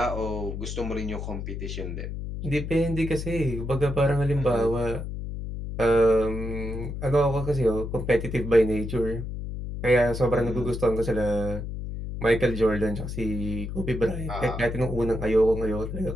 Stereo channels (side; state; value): left; noise; hum, 6 dB below the sound